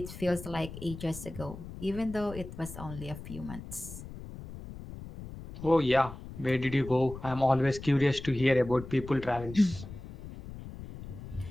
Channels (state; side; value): noise; left; rumble, 12 dB below the sound